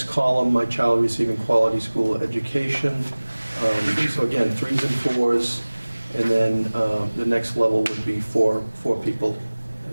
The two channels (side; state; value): both; inverted; correlation -1.00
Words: column, my child receiving quality school education. So again, 3s and 4s, and then the next level would be 4 people,